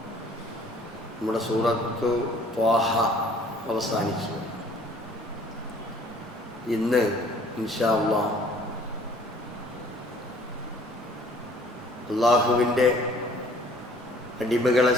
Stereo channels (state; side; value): normal; both; correlation 0.55